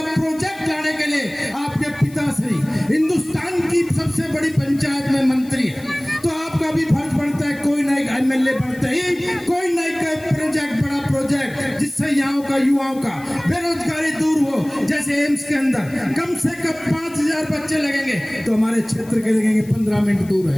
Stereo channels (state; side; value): noise; left; hiss, 23 dB below the sound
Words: प्रोजेक्ट लाने के लिए आपके पिताश्री हिंदुस्तान की सबसे बड़ी पंचायत में मंत्री है, तो आपका भी फर्ज बनता है कोई नई एमएलए बनते ही कोई नई प्रोजेक्ट, बड़ा प्रोजेक्ट जिससे यहाँ का युवाओं का बेरोजगारी दूर हो। जैसे एम्स के अंदर कम से कम 5000 बच्चे लगेंगे तो हमारे क्षेत्र के लगेंगे 15 मिनट दूर